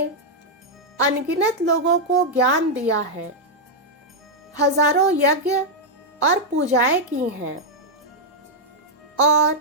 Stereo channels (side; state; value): both; normal; correlation -0.02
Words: अनगिनत लोगों को ज्ञान दिया है, हजारों यज्ञ और पूजाएं की हैं और